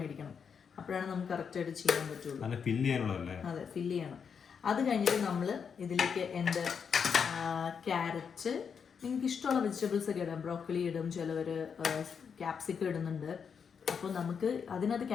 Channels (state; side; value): quieter; right; 6.6 dB